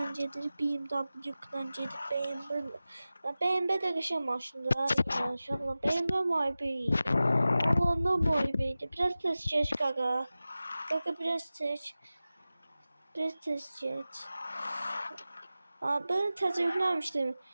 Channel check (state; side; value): inverted; both; correlation -0.95